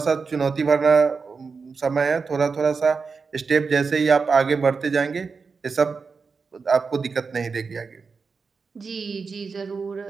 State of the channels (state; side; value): quieter; left; 5.0 dB